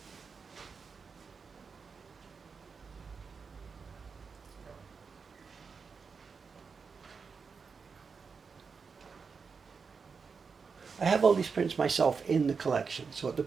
I have all these prints myself in the collection, so at the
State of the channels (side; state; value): left; quieter; 5.3 dB